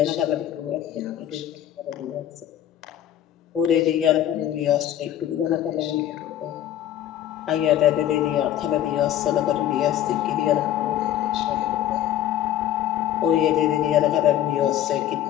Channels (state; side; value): quieter; right; 11.6 dB